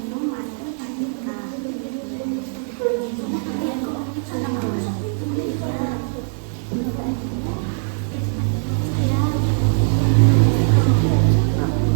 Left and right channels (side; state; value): left; silent; 65 dB below the other